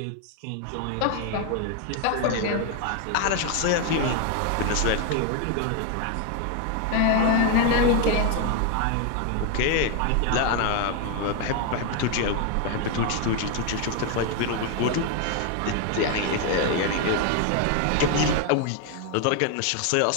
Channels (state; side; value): different; both; correlation 0.01